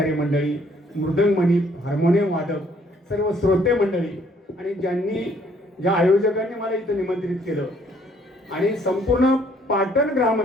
मंडळी, मृदंगमणी, हार्मोनियम वादक, सर्व श्रोते मंडळी आणि ज्या आयोजकांनी मला इथं निमंत्रित केलं आणि संपूर्ण पाटण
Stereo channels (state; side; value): normal; both; correlation 0.64